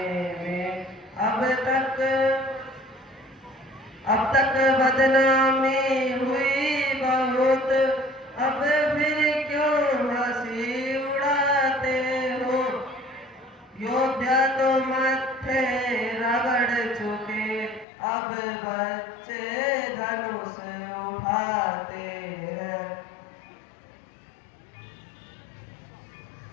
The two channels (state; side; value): drops out; right; at 17.9 s